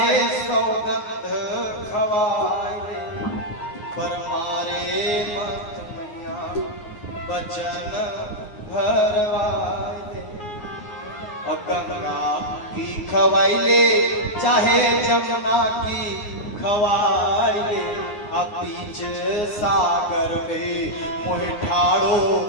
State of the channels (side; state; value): right; late; 9.6 ms